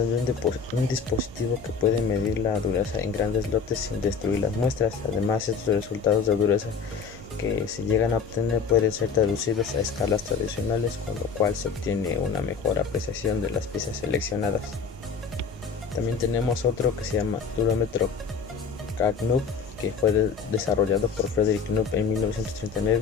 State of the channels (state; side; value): quieter; right; 5.7 dB